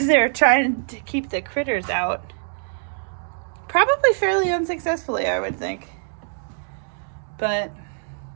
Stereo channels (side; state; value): left; silent; 63 dB below the other